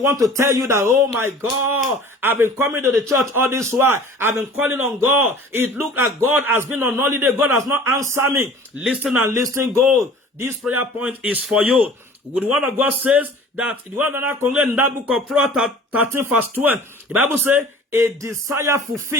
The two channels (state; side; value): normal; both; correlation 0.45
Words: to tell you that, oh my God, I've been coming to the church all this while. I've been calling on God. It looked like God has been on holiday. God has not answered me. Listen and listen, God. This prayer point is for you. The word of God says that the word of God concludes in that book of Proverbs 13 verse 12. The Bible says, a desire